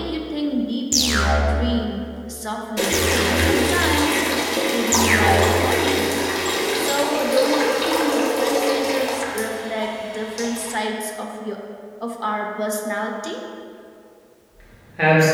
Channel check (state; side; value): identical; both; correlation 1.00